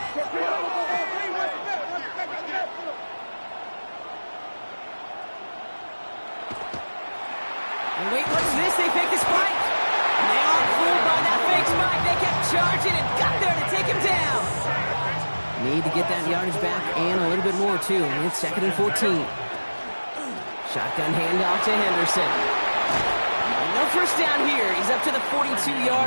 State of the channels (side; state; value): both; inverted; correlation -1.00